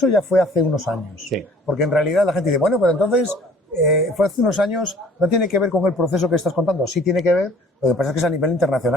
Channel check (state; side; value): normal; both; correlation 0.53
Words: ya fue hace unos años. Sí. Porque en realidad la gente dice, bueno, pero entonces fue hace unos años, no tiene que ver con el proceso que estás contando, sí tiene que ver, lo que pasa es que es a nivel